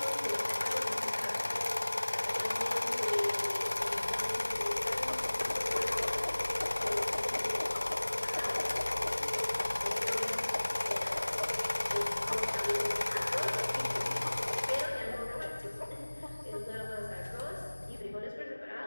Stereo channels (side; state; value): both; inverted; correlation -1.00